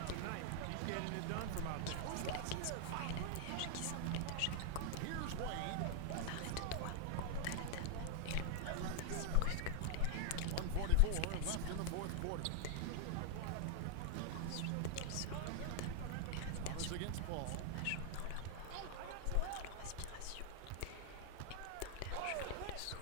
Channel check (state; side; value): different; both; correlation 0.00